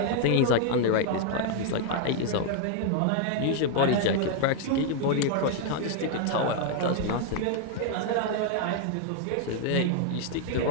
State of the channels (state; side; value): different; both; correlation 0.00